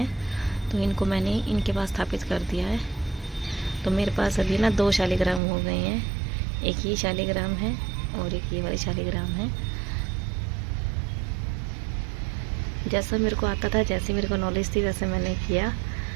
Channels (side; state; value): left; drops out; at 5.4 s